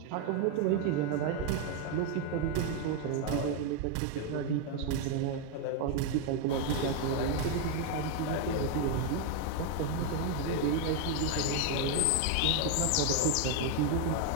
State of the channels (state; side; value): different; both; correlation 0.01